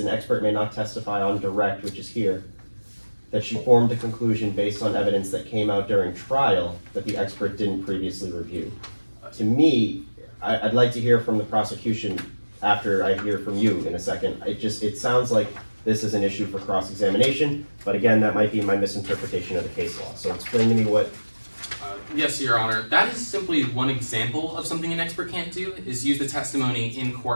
expert may not testify on direct, which is here, that she formed a conclusion based on evidence that came out during trial that the expert didn't previously review. To me, I'd like to hear from the prosecution after I hear from you in a second. It sounds like this is an issue for cross-examination, but again, that might be my misinterpretation of the case law. So explain to me what. Yes, Your Honor. That is simply one example of something an expert can't do, is use the testimony in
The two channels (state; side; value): inverted; both; correlation -1.00